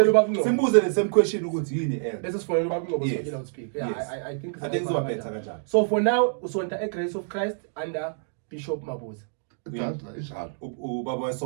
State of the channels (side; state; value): left; silent; digital silence